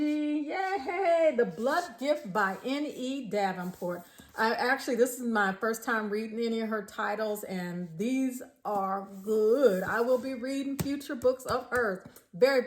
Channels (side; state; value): both; identical; correlation 1.00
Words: Yay! The Blood Gift by N.E Davenport. This is my first time reading any of her titles and these are good. I will be reading future books of hers. Very,